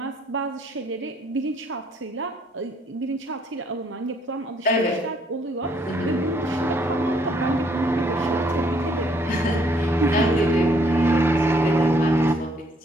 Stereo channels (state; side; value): normal; both; correlation 0.66